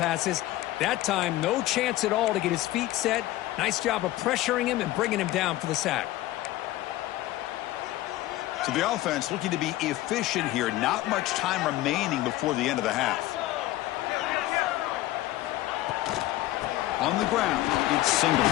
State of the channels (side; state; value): right; quieter; 16.1 dB